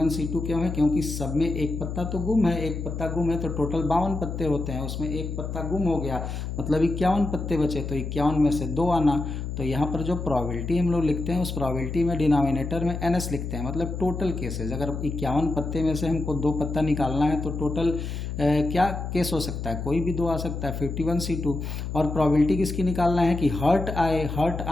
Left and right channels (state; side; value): noise; left; hum, 5 dB below the sound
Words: क्यों है? क्योंकि सब में एक पत्ता तो गुम है, एक पत्ता गुम है तो टोटल 52 पत्ते होते हैं, उसमें एक पत्ता गुम हो गया मतलब 51 पत्ते बचे, तो 51 में से 2 आना। तो यहाँ पर जो प्रोबेबिलिटी हम लोग लिखते हैं उस प्रोबेबिलिटी में डिनोमिनेटर में NS लिखते हैं, मतलब टोटल केसेस। अगर 51 पत्ते में से हमको 2 पत्ता निकालना है तो टोटल क्या केस हो सकता है? कोई भी 2 आ सकता है, 51C2। और प्रोबेबिलिटी किसकी निकालना है कि हर्ट